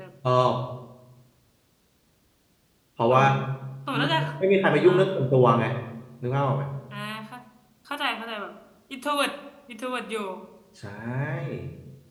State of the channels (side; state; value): both; identical; correlation 1.00